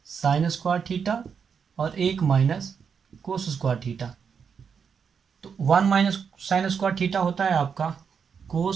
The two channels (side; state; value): left; quieter; 6.5 dB